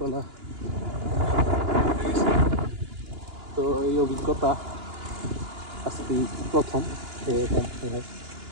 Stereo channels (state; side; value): late; left; 2.9 ms